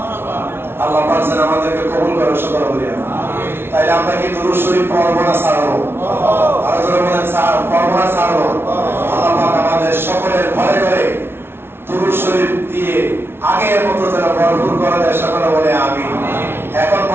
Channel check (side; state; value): left; late; 0.11 ms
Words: আল্লাহ পাক যেন আমাদেরকে কবুল করে, সকলে বলি আমিন। তাইলে আমরা কি দুরূদ শরীফ পড়ব না ছাড়বো? আর যারা বলেন পড়ব না ছাড়বো, আল্লাহ পাক আমাদের সকলের ঘরে ঘরে দুরূদ শরীফ দিয়ে আগের মতো যেন ভরপুর করে দেয়, সকলে বলে আমিন। এখন